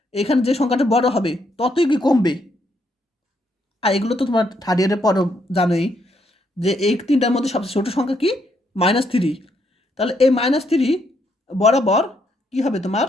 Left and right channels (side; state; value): both; normal; correlation 0.75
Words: এখানে যে সংখ্যাটা বড় হবে ততই কি কমবে। আর এগুলো তো তোমার থার্ড ইয়ারের পরও জানোই যে এই তিনটার মধ্যে সবচেয়ে ছোটো সংখ্যা কি -3, তাহলে এই -3 বরাবর কি হবে তোমার